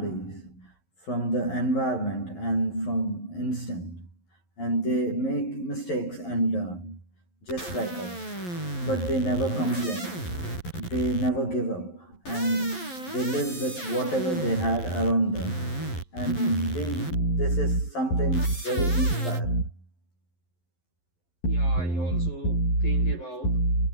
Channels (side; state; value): right; late; 11 ms